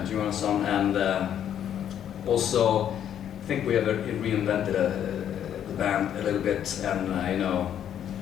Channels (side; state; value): right; quieter; 9.8 dB